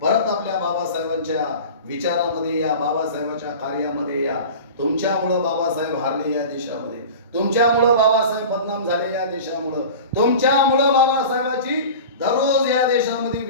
परत आपल्या बाबासाहेबांच्या विचारामध्ये या, बाबासाहेबांच्या कार्यामध्ये या. तुमच्यामुळं बाबासाहेब हारले या देशामध्ये, तुमच्यामुळं बाबासाहेब बदनाम झाले या देशामुळं, तुमच्यामुळं बाबासाहेबाची दररोज या देशामध्ये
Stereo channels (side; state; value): both; inverted; correlation -0.36